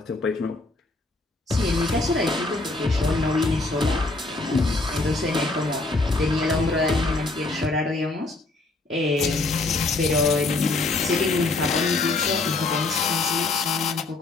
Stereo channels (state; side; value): quieter; right; 3.2 dB